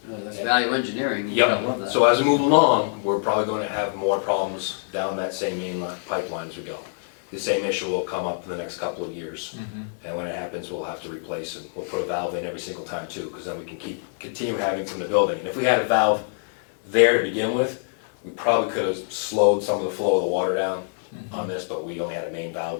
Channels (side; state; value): right; silent; digital silence